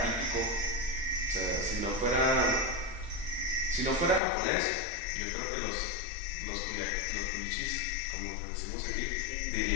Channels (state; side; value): drops out; right; at 4.2 s